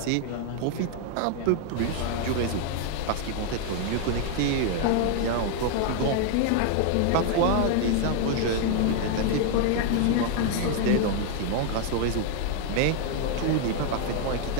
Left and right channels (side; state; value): both; different; correlation 0.00